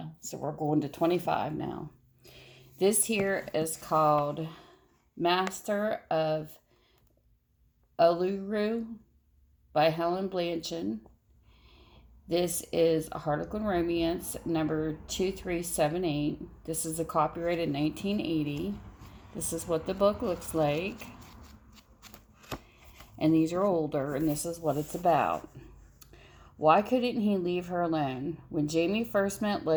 So we're going to 25 now. This here is called Master of Uluru by Helen Bianchin. This is a Harlequin Romance number 2378. This is a copyrighted 1980. This is what the book looks like. And these are older, and this is what it's about. Why couldn't he leave her alone? When Jamie first met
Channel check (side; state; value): both; identical; correlation 1.00